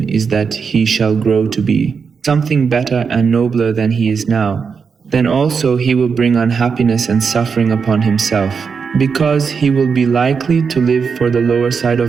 is that he shall grow to be something better and nobler than he is now, then also he will bring unhappiness and suffering upon himself, because he will be likely to live for the lower side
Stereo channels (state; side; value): quieter; left; 5.8 dB